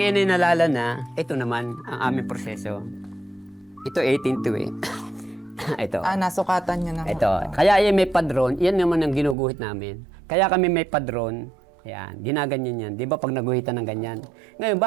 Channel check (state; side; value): drops out; left; at 9.3 s